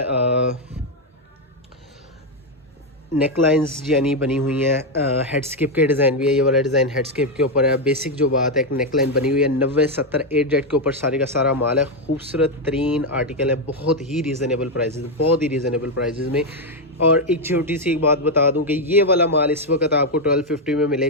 नेक लाइन्स यानी बनी हुई हैं, हेडस्केप के डिज़ाइन भी है। ये वाला डिज़ाइन हेडस्केप के ऊपर है। बेसिक जो बात है, एक नेक लाइन बनी हुई है 90-70 8 जेट के ऊपर सारे का सारा माल है। खूबसूरत तरीन आर्टिकल है, बहुत ही रीज़नेबल प्राइजेज़, बहुत ही रीज़नेबल प्राइजेज़ में। और एक छोटी सी एक बात बता दूं कि ये वाला माल इस वक्त आपको 1250 में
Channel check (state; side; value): normal; both; correlation 0.04